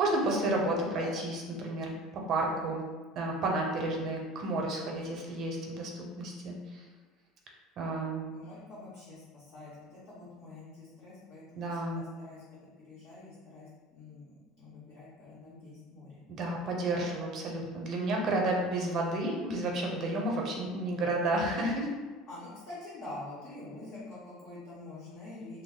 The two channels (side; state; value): both; normal; correlation 0.40